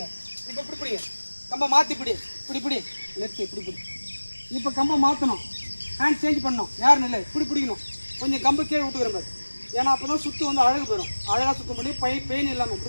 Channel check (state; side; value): inverted; both; correlation -1.00